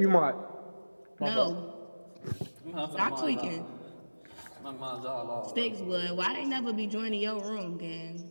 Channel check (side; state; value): both; inverted; correlation -1.00